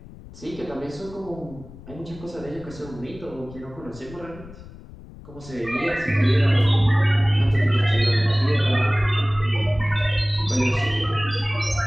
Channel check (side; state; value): left; noise; rumble, 17 dB below the sound